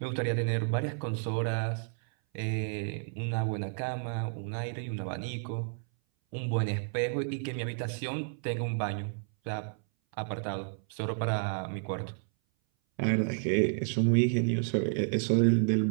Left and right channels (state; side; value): silent; left; 57 dB below the other